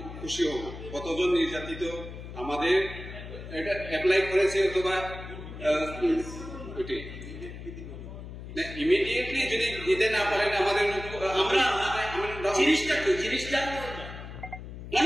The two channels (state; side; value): noise; left; hum, 11 dB below the sound